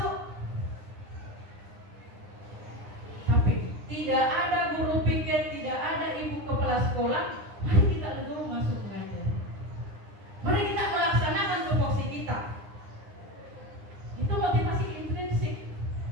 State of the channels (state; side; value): late; left; 9.8 ms